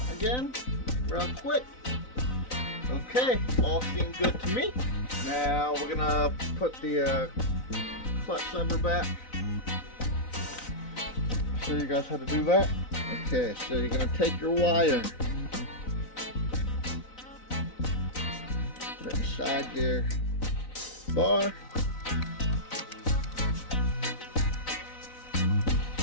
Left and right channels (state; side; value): late; right; 3.9 ms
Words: again, real quick. Okay, all seem good to me. Now we're gonna put the clutch lever back. Show you guys how to do that. Okay, so you're gonna take your wire, put it inside your bar.